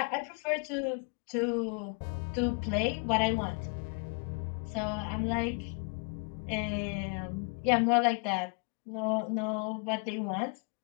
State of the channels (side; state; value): right; quieter; 36.1 dB